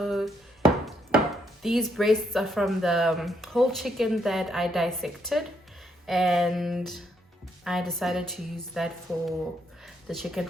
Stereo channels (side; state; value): both; normal; correlation 0.75